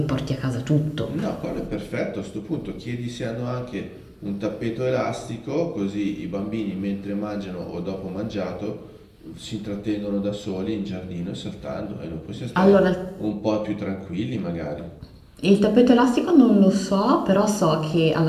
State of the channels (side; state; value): both; identical; correlation 1.00